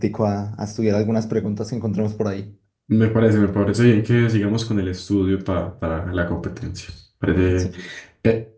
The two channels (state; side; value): identical; both; correlation 1.00